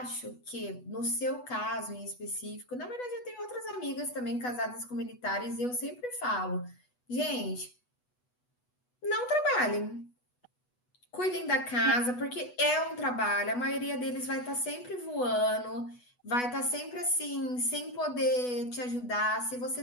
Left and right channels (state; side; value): late; right; 8.1 ms